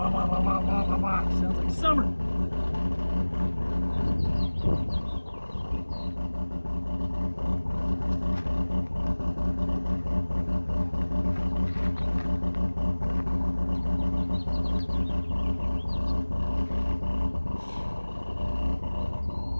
Sounds like summer.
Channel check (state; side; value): inverted; both; correlation -1.00